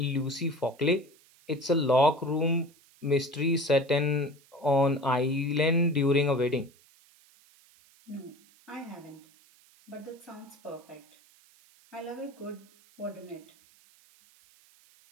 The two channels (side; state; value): right; noise; hiss, 29 dB below the sound